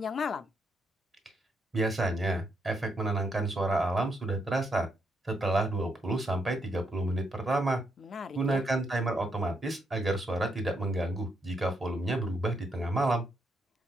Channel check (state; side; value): normal; both; correlation 0.78